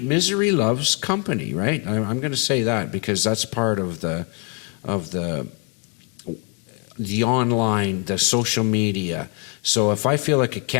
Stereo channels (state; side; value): quieter; right; 35.8 dB